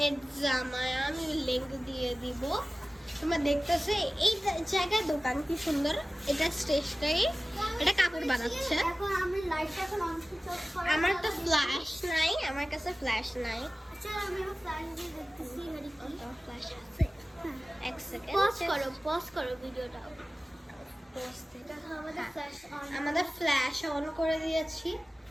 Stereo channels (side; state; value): both; normal; correlation 0.97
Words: এডজামায়া, আমি লিংক দিয়ে দিব। তোমরা দেখতেছো এই জায়গায় দোকান কি সুন্দর। এটা স্টেশনারি, এটা কাপড় বানাচ্ছে। আমার তো ফ্ল্যাশ নাই, আমার কাছে ফ্ল্যাশ নাই। ফ্ল্যাশ আছে, এক সেকেন্ড পজ করো ভিডিওটা। আমাদের ফ্ল্যাশ অন করে দিয়েছি।